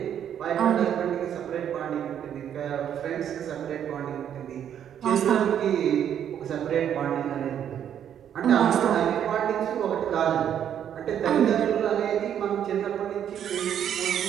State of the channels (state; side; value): quieter; left; 9.4 dB